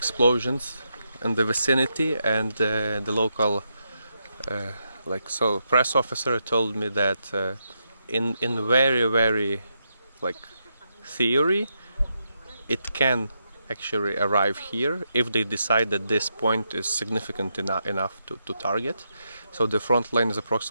in the vicinity, and the local press officer told me that in very like theory it can actually arrive here if they decide that this point is significant enough to target. So the front line is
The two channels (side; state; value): both; inverted; correlation -0.83